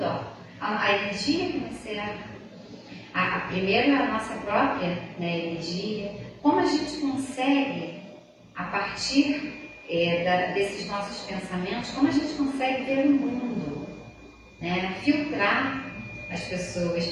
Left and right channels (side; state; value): both; identical; correlation 1.00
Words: A energia que nos cerca, primeiro a nossa própria, né, energia, como a gente consegue, a partir desses nossos pensamentos, como a gente consegue ver o mundo, né, filtrar as pessoas.